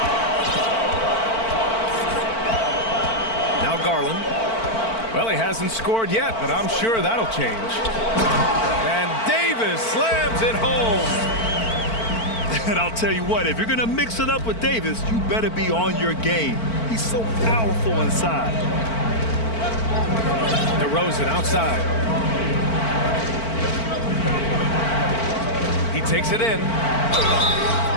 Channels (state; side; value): late; right; 4.5 ms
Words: Now Garland. Well, he hasn't scored yet, but I'm sure that'll change. And Davis slams it home. And I'll tell you what, if you're going to mix it up with Davis, you better be on your game. He's so powerful inside. DeRozan outside. He takes it in.